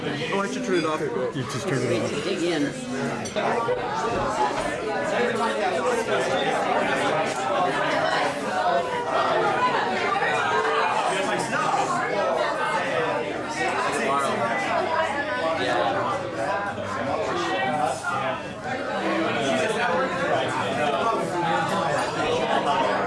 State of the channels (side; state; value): both; identical; correlation 1.00